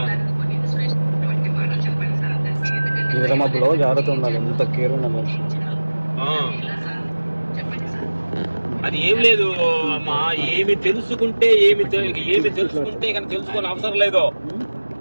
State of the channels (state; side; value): inverted; both; correlation -1.00